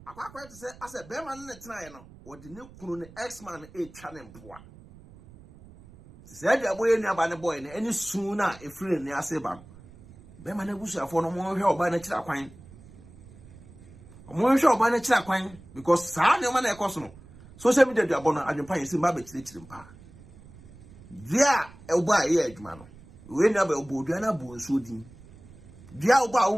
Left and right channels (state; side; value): noise; right; rumble, 21 dB below the sound